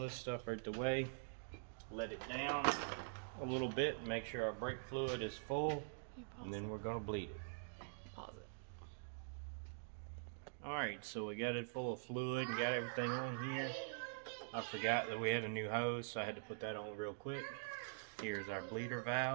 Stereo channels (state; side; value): silent; left; digital silence